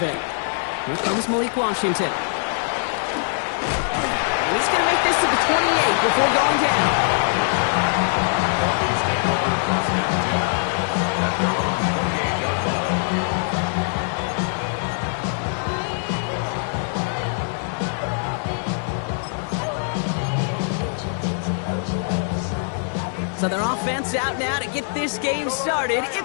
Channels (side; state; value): right; silent; 64 dB below the other